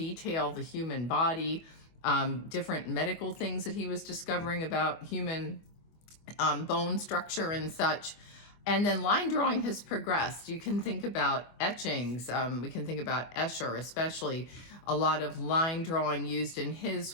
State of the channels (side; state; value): right; late; 25 ms